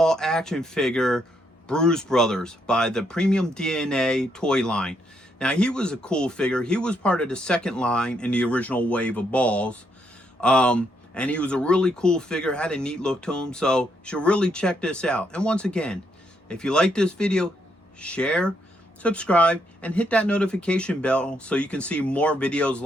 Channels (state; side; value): normal; both; correlation 0.76